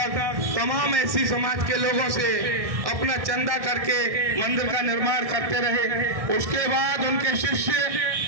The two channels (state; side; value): late; left; 1.6 ms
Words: तमाम एससी समाज के लोगों से अपना चंदा करके मंदिर का निर्माण करते रहे। उसके बाद उनके शिष्य